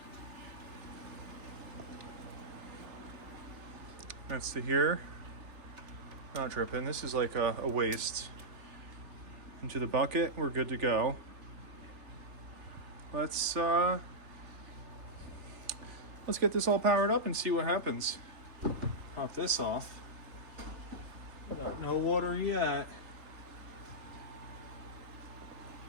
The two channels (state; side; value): late; left; 3.4 ms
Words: That's to here. Not dripping. This is like a waste. Into the bucket. We're good to go. Let's get this all powered up and see what happens. Pop this off. No water yet.